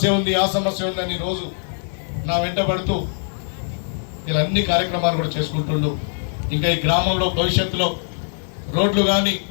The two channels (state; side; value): silent; right; digital silence